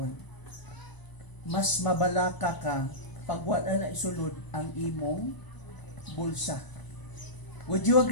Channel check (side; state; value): right; late; 1.0 ms